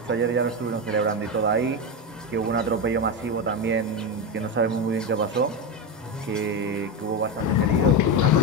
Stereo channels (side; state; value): both; normal; correlation 0.13